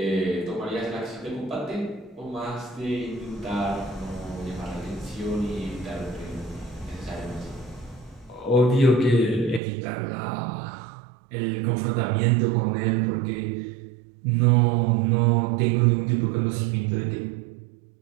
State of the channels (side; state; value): left; drops out; at 9.6 s